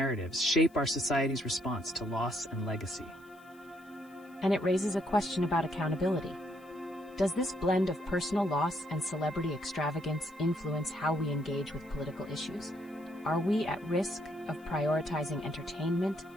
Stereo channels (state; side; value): noise; left; hiss, 30 dB below the sound